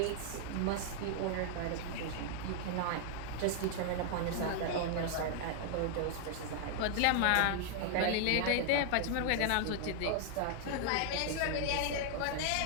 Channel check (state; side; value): different; both; correlation -0.01